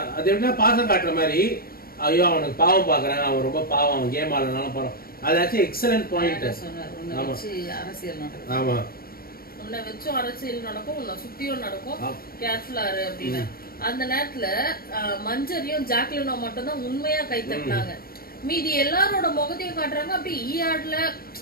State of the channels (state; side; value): late; right; 0.43 ms